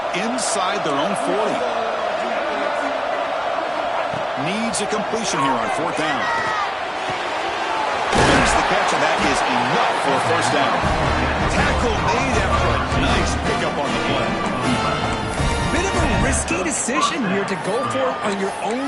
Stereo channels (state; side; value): identical; both; correlation 1.00